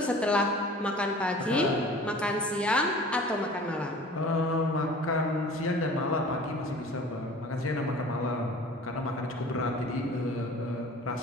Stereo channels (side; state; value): both; normal; correlation 0.44